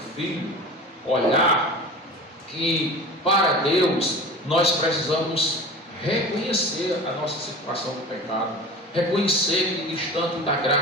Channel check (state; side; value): normal; both; correlation 0.35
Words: filho, olhar que para Deus nós precisamos reconhecer a nossa situação de pecado, reconhecer que distante da